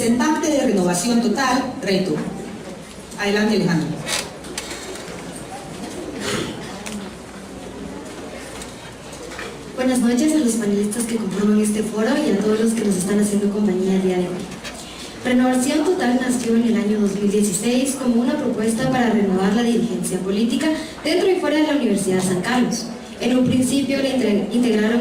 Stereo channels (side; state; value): both; identical; correlation 1.00